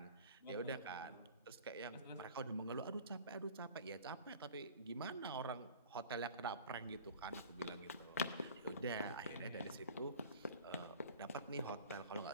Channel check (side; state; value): both; inverted; correlation -0.43